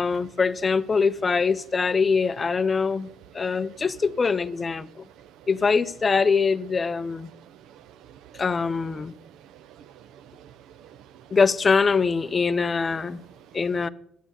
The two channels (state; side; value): quieter; right; 4.6 dB